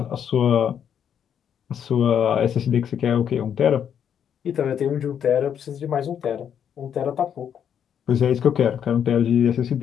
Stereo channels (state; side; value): quieter; right; 8.6 dB